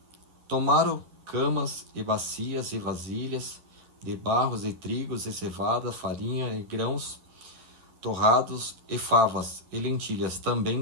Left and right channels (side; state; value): left; late; 11 ms